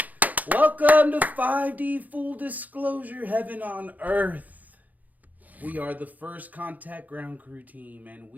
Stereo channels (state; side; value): late; left; 0.080 ms